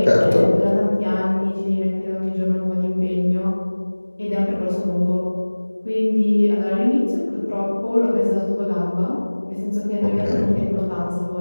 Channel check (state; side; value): inverted; both; correlation -1.00